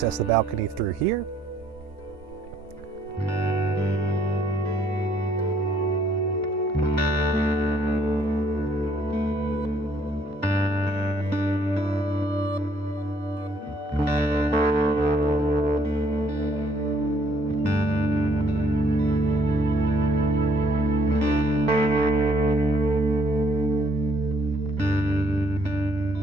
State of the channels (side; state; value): both; normal; correlation 0.65